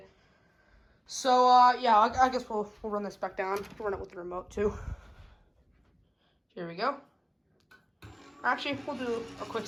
So, yeah, I guess we'll run this back down. We'll run it with the remote, too. Here we go. Actually, we'll do a quick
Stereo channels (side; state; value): both; identical; correlation 1.00